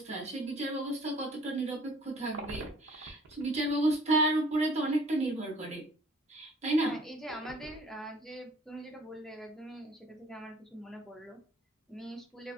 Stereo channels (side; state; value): both; normal; correlation 0.54